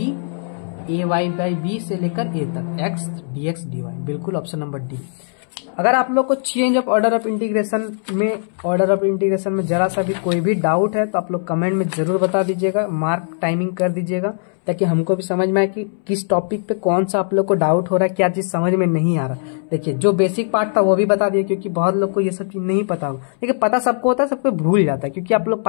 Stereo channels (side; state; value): right; silent; 66 dB below the other